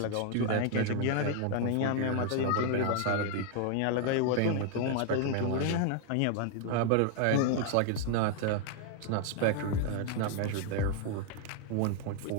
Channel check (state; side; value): different; both; correlation 0.00